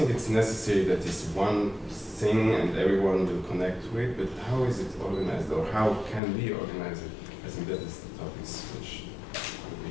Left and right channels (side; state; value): right; drops out; at 6.2 s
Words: it's necessary that it's one thing and everyone will connect to it, but how is it organized, or how can we organize it? I think that is the topics which would be